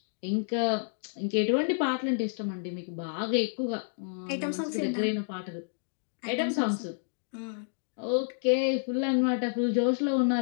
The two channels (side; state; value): right; silent; digital silence